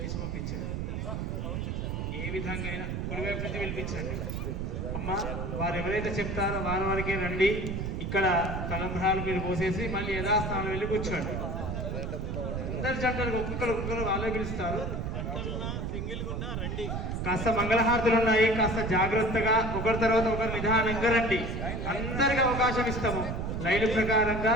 పంపించండి. ఏ విధంగా అయినా కుడివైపు నుంచి పిలిపించండి. అమ్మ వారు ఎవరైతే చెప్తారో వారికే రండి. ఇక్కడ తలంబ్రాలు మీరు పోసేసి మళ్ళీ యథాస్థానం వెళ్ళి కూర్చోండి. అందరి జంటలకు ఒక్కొక్కరు వాళ్ళే పిలుస్తారు. కాస్త మంగళహారతులు ఉన్నాయి, కాస్త జాగ్రత్తగా ఒకరి తర్వాత ఒకరు నిదానంగా రండి. అందరికి అవకాశం ఇస్తాము. లైన్ ప్రకారంగా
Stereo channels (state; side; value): noise; right; rumble, 3 dB below the sound